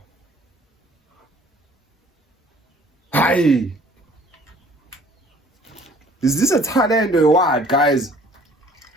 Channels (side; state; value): both; normal; correlation 0.55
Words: Hayi. Is this a talent or what, guys?